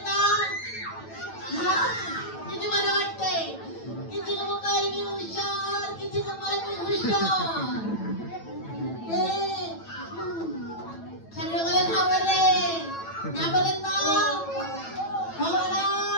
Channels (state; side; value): late; right; 9.0 ms